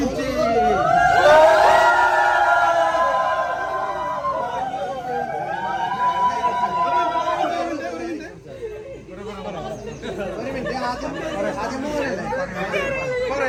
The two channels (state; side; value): identical; both; correlation 1.00